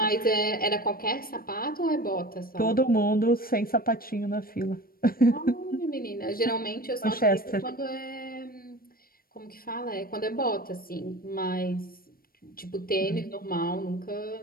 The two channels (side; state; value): right; late; 0.43 ms